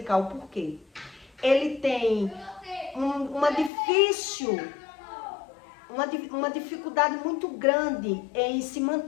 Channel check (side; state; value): right; drops out; at 3.7 s